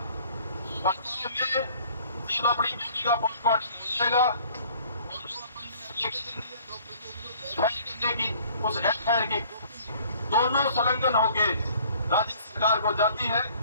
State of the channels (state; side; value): inverted; both; correlation -0.54